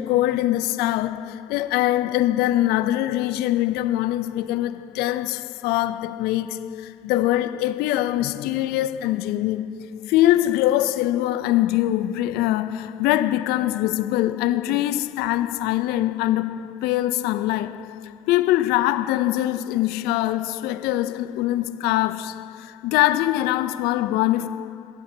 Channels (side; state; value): right; quieter; 14.2 dB